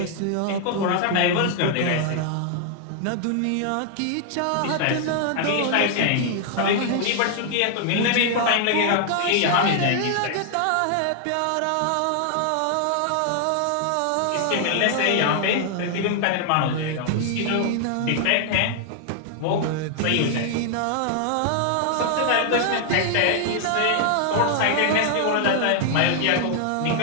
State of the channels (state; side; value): different; both; correlation 0.00